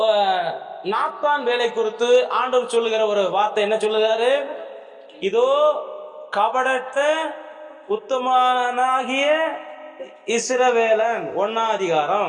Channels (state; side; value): identical; both; correlation 1.00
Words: நாத்தான் வேலை குறித்து ஆண்டவர் சொல்லுகிற ஒரு வார்த்தை என்ன சொல்லுகிறாரு? இதோ கபடற்ற உத்தமனாகிய இஸ்ரவேலன். 1ஆம்